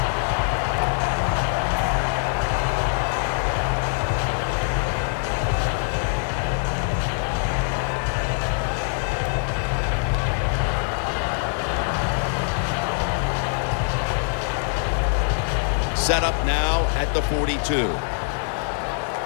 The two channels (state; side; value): silent; right; 57 dB below the other